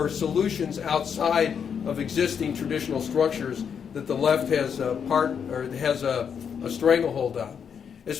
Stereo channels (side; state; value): right; quieter; 7.3 dB